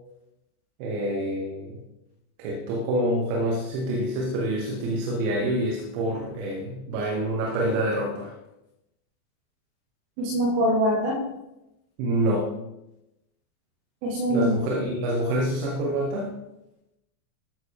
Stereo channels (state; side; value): late; left; 38 ms